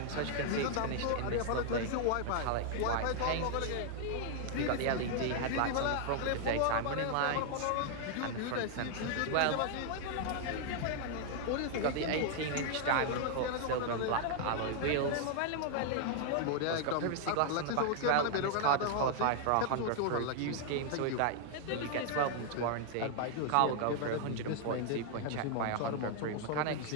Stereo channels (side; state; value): both; different; correlation 0.00